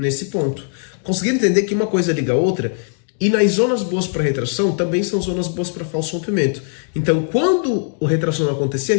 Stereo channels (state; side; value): silent; right; 62 dB below the other